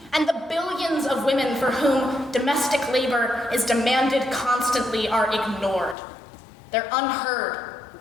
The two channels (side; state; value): right; drops out; at 6.0 s